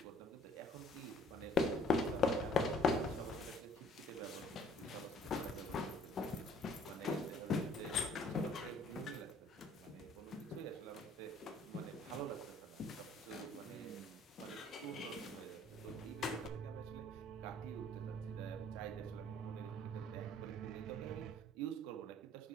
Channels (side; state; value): both; normal; correlation 0.57